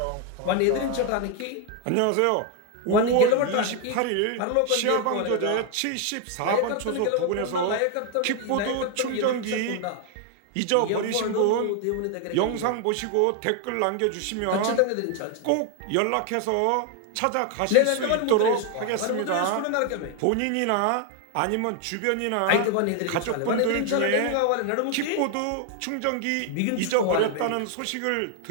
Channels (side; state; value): both; different; correlation 0.01